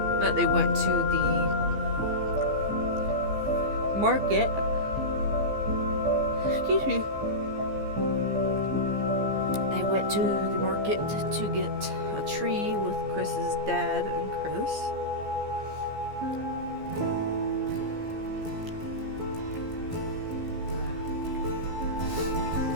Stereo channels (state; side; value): late; left; 15 ms